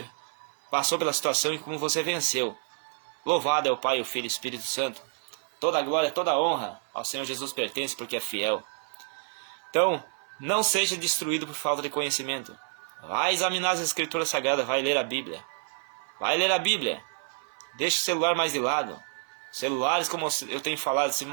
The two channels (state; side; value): silent; left; 56 dB below the other